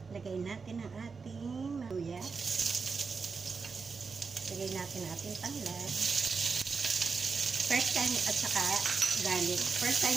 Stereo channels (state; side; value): quieter; left; 5.0 dB